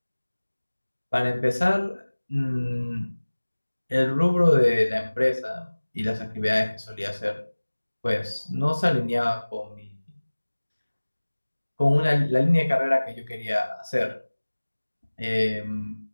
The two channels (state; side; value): inverted; both; correlation -1.00